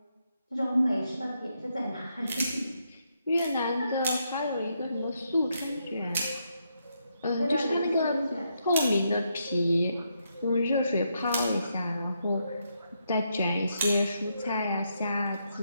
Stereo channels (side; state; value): both; inverted; correlation -0.79